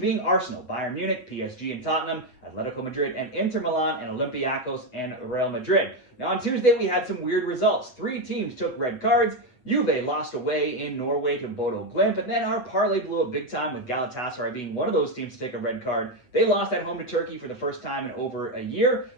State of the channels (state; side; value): late; right; 8.0 ms